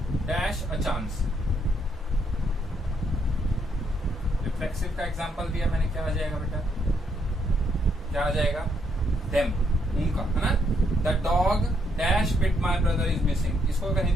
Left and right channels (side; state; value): both; normal; correlation 0.74